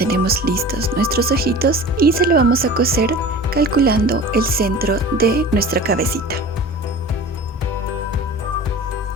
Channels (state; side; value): normal; both; correlation 0.38